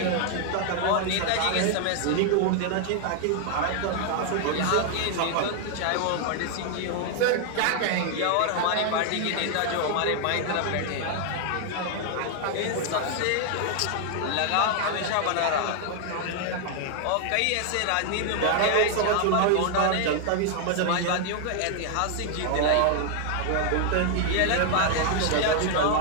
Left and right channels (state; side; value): different; both; correlation 0.00